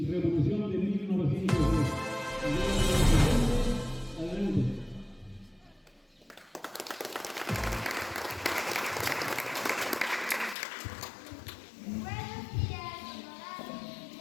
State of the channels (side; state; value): right; drops out; at 10.6 s